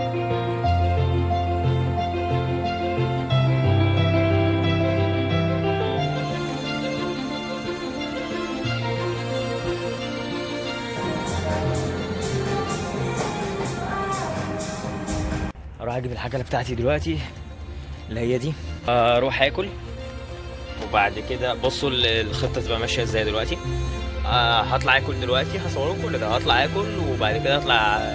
اروح اجيب الحاجه بتاعتي دلوقتي اللي هي دي، اروح اكل وبعد كده بصوا الخطه تبقى ماشيه ازاي دلوقتي. هطلع اكل دلوقتي، هصور كل ده، هطلع اكل وبعد كده اطلع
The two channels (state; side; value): identical; both; correlation 1.00